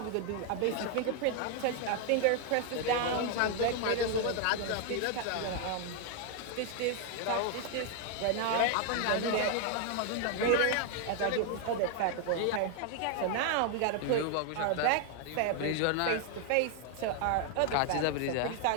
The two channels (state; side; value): different; both; correlation 0.00